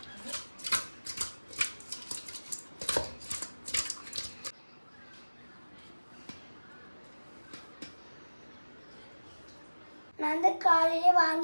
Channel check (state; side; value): inverted; both; correlation -1.00